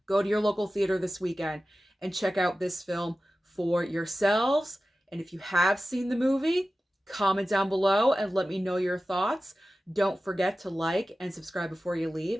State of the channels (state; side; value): normal; both; correlation 0.95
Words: Go to your local theater this weekend and check out this film for yourselves. And if you have seen the movie, comment down below and let me know your thoughts. Don't forget to like and subscribe before you